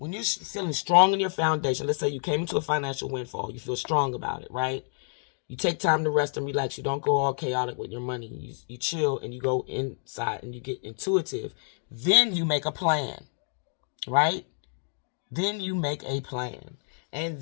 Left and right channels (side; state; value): right; silent; 59 dB below the other